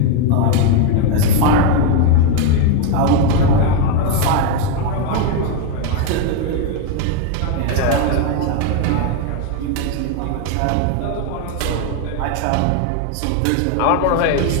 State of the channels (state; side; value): different; both; correlation 0.02